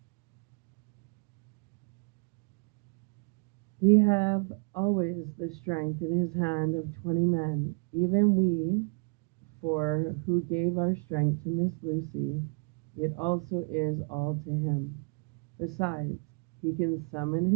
He have always the strength in his hand of 20 men, even we, for who gave our strength to Miss Lucy, it also is all to him. Besides, he can summon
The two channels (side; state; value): left; quieter; 36.5 dB